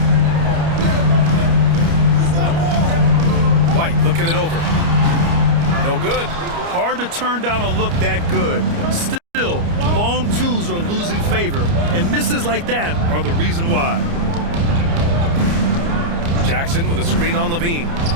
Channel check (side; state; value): left; late; 29 ms